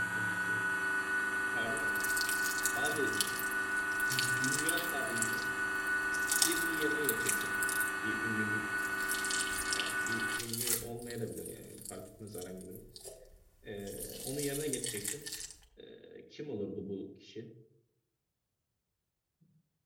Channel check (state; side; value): identical; both; correlation 1.00